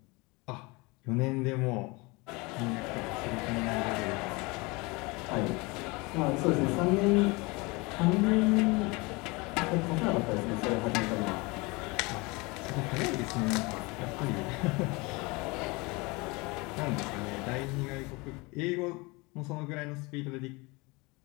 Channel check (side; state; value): right; quieter; 25.6 dB